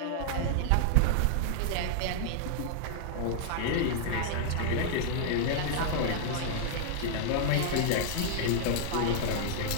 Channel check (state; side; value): different; both; correlation -0.01